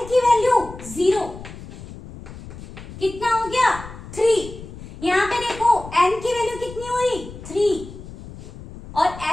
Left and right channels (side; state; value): left; noise; rumble, 14 dB below the sound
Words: की वैल्यू 0, कितना हो गया 3। यहाँ पे देखो n की वैल्यू कितनी हुई 3 और